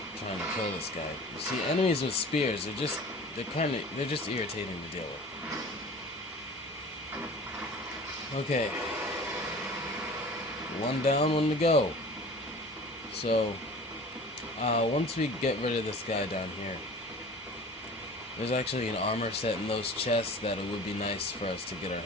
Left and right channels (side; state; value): both; normal; correlation 0.41